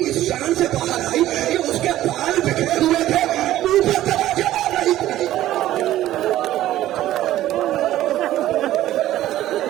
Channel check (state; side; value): quieter; left; 13.9 dB